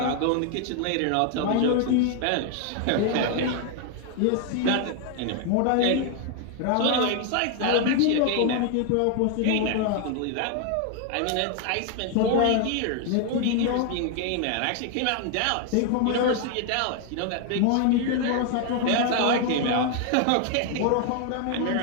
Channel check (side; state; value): both; different; correlation 0.00